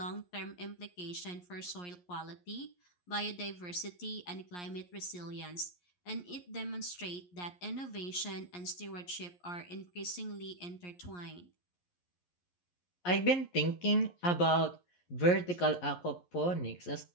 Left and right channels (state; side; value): late; right; 11 ms